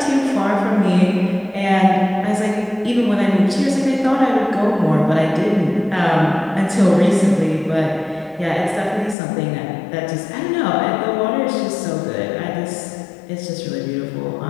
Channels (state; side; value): drops out; right; at 9.2 s